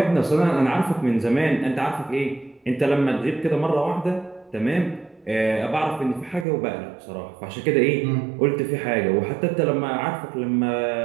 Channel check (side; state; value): left; drops out; at 6.5 s